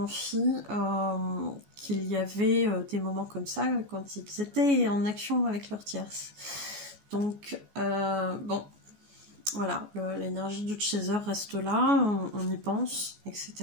qu'il y avait des moments comme ça quand ils étaient en action avec leur tierce. Donc bon... Voilà, l'énergie du chaser reste là, on y pense, etc.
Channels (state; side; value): late; left; 14 ms